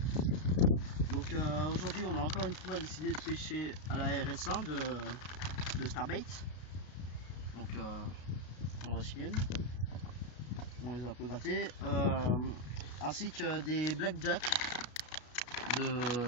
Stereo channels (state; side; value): late; right; 33 ms